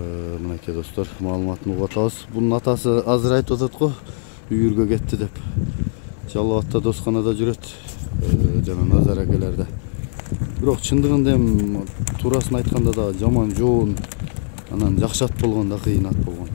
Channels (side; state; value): right; silent; digital silence